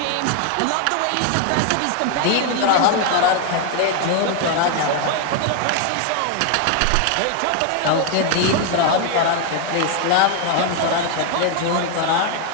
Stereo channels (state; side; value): different; both; correlation 0.00